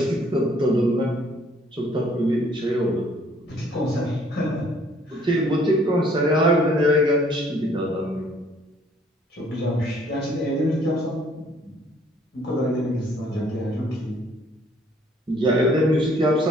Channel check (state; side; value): normal; both; correlation 0.61